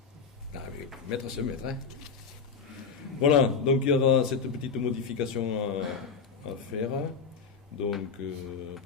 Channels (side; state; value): right; quieter; 5.6 dB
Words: Ah, mais mètre c'est mètre, hein. Voilà, donc il y aura cette petite modification à faire. Donc,